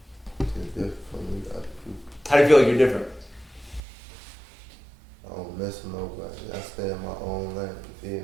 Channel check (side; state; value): left; drops out; at 3.8 s